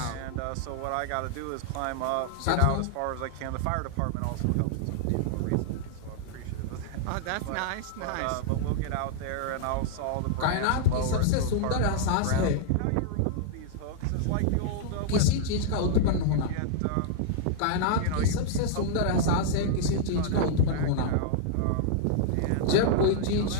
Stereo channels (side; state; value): both; different; correlation -0.01